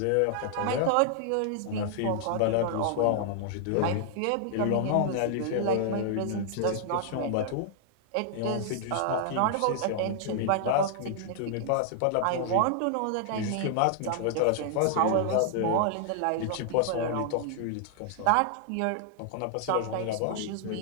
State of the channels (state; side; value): different; both; correlation -0.01